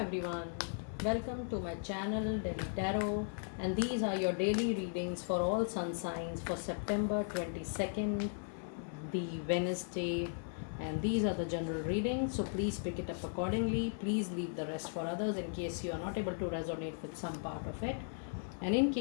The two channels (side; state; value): right; silent; 53 dB below the other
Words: welcome to my channel Delhi Tarot, and these are your daily readings for all sun signs for September 22nd, the Wednesday, and these are the general readings, so please pick it up accordingly. Please leave the rest for others in case you are not able to resonate with some part of it. And in